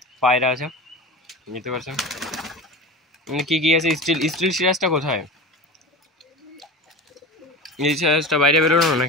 পায়রা আছে, নিতে পারছেন কি কি আছে। স্টিল সিরাজটা কোথায়? এই সিরাজটা বাইরে বেরোনো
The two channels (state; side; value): normal; both; correlation 0.30